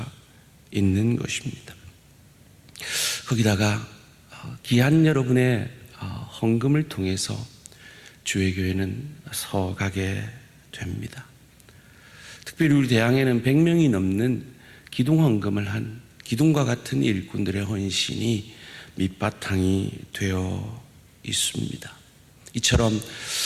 있는 것입니다. 거기다가 귀한 여러분의 헌금을 통해서 주의 교회는 서가게 됩니다. 특별히 우리 대항에는 100명이 넘는 기둥 헌금을 한 기둥과 같은 일꾼들의 헌신이 밑바탕이 되어 있습니다. 이처럼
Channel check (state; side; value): identical; both; correlation 1.00